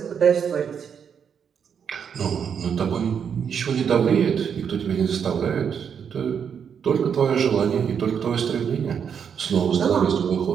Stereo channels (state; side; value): quieter; left; 7.4 dB